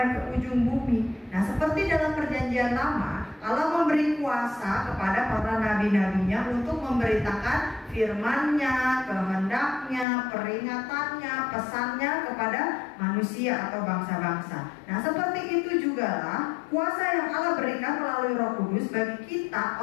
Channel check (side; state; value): right; drops out; at 10.1 s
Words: ke ujung bumi. Nah, seperti dalam perjanjian lama, Allah memberi kuasa kepada para nabi-nabinya untuk memberitakan firman-Nya, kehendak-Nya, peringatannya, pesannya kepada manusia atau bangsa-bangsa. Nah, seperti itu jugalah kuasa yang Allah berikan melalui Roh Kudus bagi kita